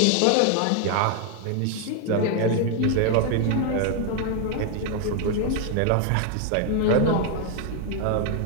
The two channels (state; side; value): different; both; correlation 0.00